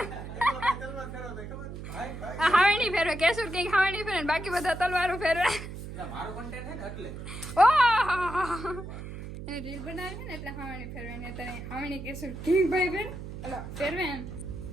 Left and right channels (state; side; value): noise; right; hum, 9 dB below the sound